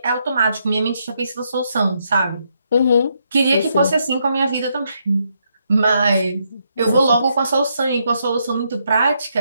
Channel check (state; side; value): inverted; both; correlation -0.77